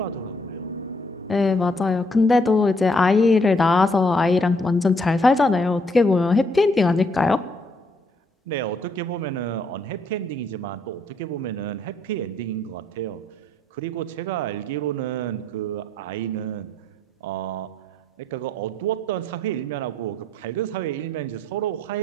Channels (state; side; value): normal; both; correlation 0.70